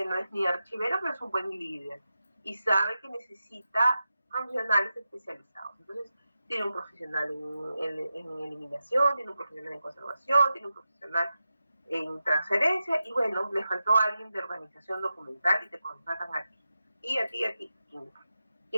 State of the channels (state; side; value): inverted; both; correlation -0.91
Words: no es ni archivero, pero es un buen líder y sabe que necesita profesionales especializados. Entonces, tiene un profesional en eliminación, tiene un profesional en conservación, tiene un profesional en transferencia y bueno, le faltó a alguien de organización documental y te contratan a ti. Y a ti.